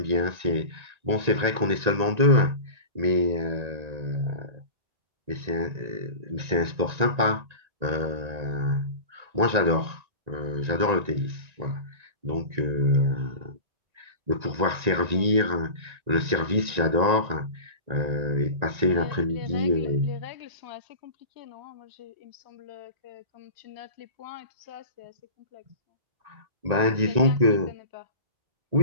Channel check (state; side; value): late; left; 1.9 ms